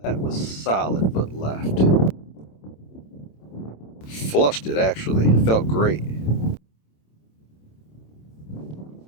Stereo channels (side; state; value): right; late; 27 ms